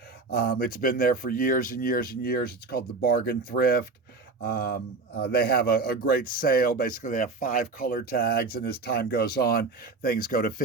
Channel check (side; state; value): left; quieter; 4.0 dB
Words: It's been there for years and years and years. It's called the Bargain Thrift. They have a great sale. Basically, they have 5 color tags, and as time goes on, things go to